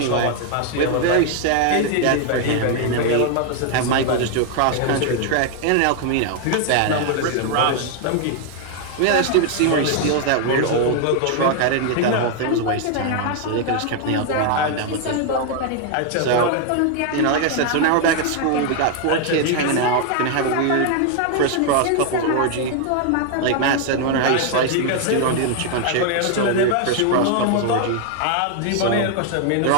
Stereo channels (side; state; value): both; different; correlation 0.00